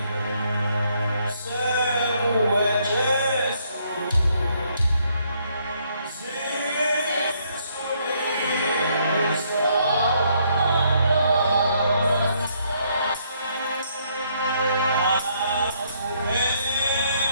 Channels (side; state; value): both; inverted; correlation -0.70